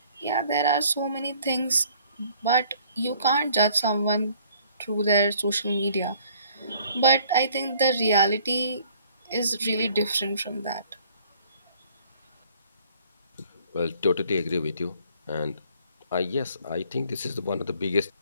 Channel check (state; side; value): inverted; both; correlation -0.57